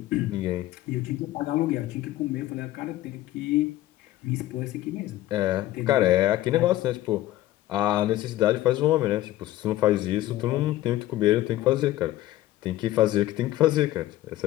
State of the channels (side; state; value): right; quieter; 15.2 dB